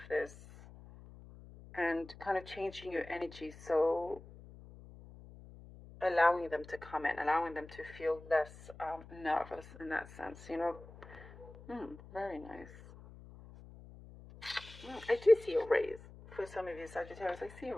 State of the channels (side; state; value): left; noise; hum, 18 dB below the sound